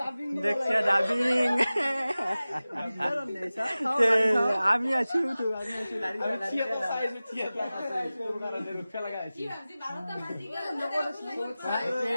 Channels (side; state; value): both; inverted; correlation -0.97